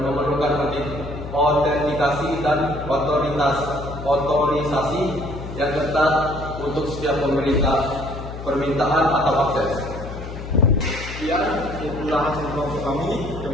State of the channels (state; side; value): noise; left; hum, 10 dB below the sound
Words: memerlukan autentikasi dan otorisasi yang ketat untuk setiap permintaan atau akses. Sekian itulah hasil kelompok kami.